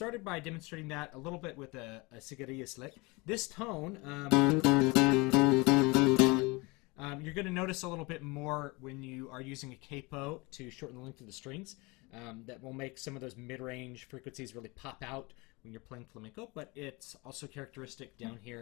by demonstrating that a little bit with a cigarillas lick. This tone, you're going to notice a little bit more when you are using a capo to shorten the length of the strings. That will make some of those mid-range frequencies really pop out when you're playing flamenco, but it's also characteristic down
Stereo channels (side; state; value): right; quieter; 25.9 dB